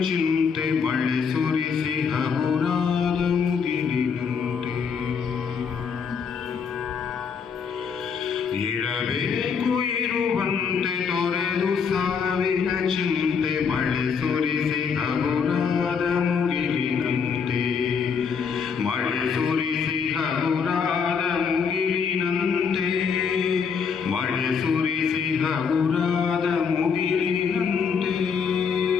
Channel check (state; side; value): quieter; right; 6.2 dB